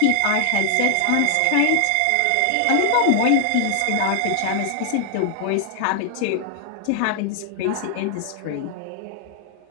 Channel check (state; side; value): different; both; correlation 0.00